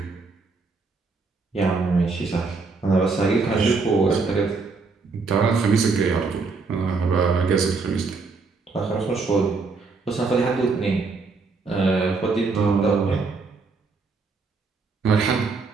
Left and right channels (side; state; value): left; quieter; 4.3 dB